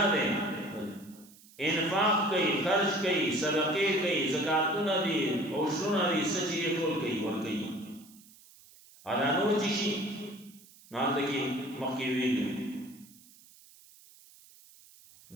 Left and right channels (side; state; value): right; noise; hiss, 24 dB below the sound